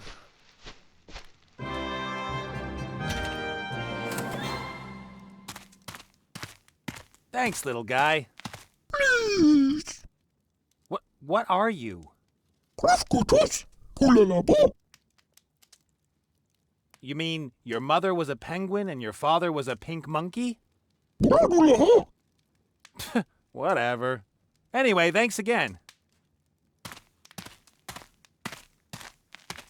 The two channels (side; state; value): both; identical; correlation 1.00